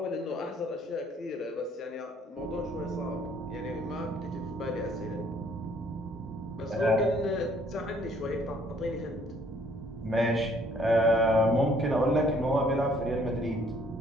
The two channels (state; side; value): normal; both; correlation 0.62